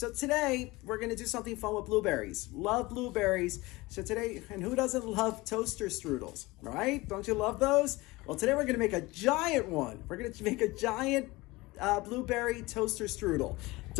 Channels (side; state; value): right; quieter; 21.5 dB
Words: today we're going to do something fun with blueberries. Love blueberries. So today, and who doesn't love toaster strudels, right? Don't you love those? Well, today we're going to make a giant one. We're going to make a giant blueberry toaster strudel.